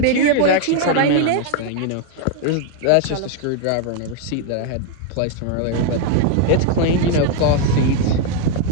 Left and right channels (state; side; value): different; both; correlation 0.00